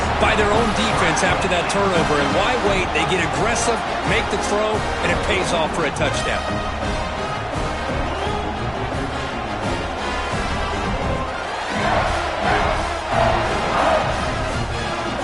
by their own defense after that turnover. And why wait? They get aggressive, make the throw, and it pays off for a touchdown.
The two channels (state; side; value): identical; both; correlation 1.00